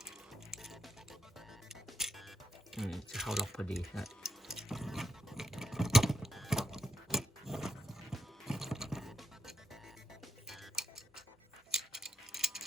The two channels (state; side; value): normal; both; correlation 0.82